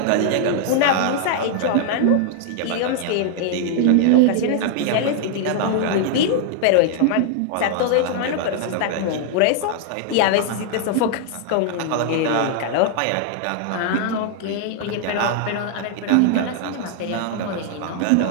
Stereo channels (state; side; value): different; both; correlation 0.00